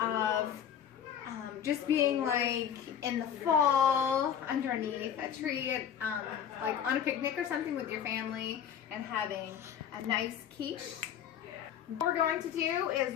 just being like in the fall underneath a tree, like on a picnic or something with your family and having a nice quiche. What we're going to do is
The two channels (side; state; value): right; quieter; 8.9 dB